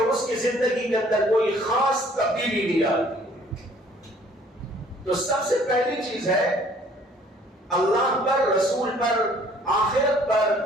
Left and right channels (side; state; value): both; normal; correlation 0.57